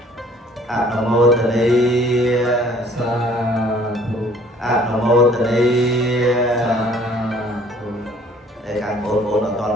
អនុមោទនាសាធុអនុមោទនាសាធុតែខាងបងប្អូនអត់ទាន់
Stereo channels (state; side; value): normal; both; correlation 0.56